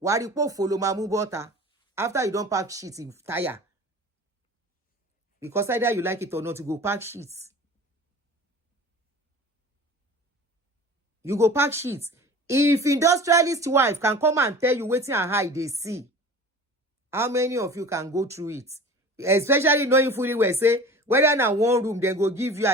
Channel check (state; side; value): normal; both; correlation 0.39